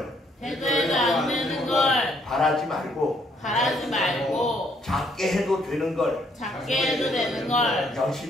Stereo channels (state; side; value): normal; both; correlation 0.68